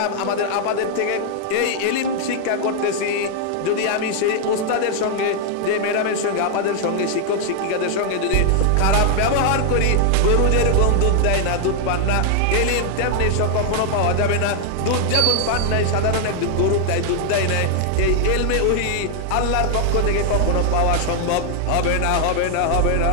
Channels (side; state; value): both; different; correlation 0.00